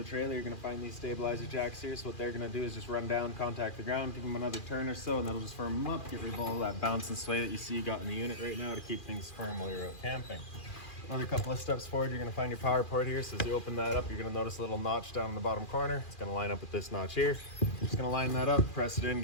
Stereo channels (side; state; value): right; late; 2.4 ms